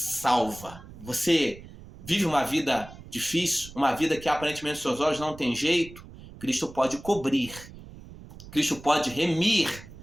Você vive uma vida difícil, uma vida que aparentemente aos seus olhos não tem jeito, Cristo pode cobrir, Cristo pode remir,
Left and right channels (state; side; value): noise; right; rumble, 17 dB below the sound